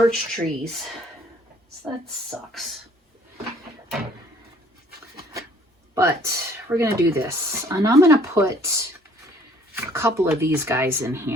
trees. So that sucks. But we're going to do this. And I'm going to put a couple of these guys in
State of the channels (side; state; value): both; normal; correlation 0.58